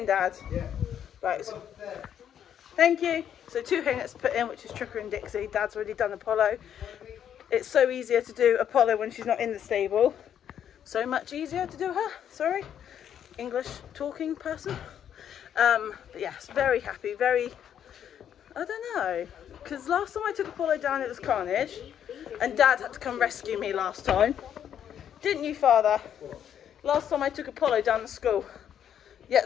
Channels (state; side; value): quieter; right; 9.4 dB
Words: Dad. Yeah. Right. So, thank you. So 2 hay nets to put in, which is Tricka and Dixie. Dad's already done Apollo. It's so easier to do Apollo when she's not in the stable. So much easier to do her. Sorry, English talking person. But yes, very happy. Very. I don't know, because last time I took Apollo down, it was carnage, and Dad had to come rescue me last time. Didn't you, Father? Last time I took Apollo down to school, you